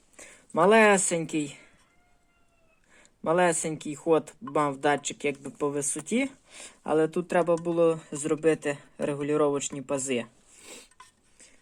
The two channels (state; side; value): identical; both; correlation 1.00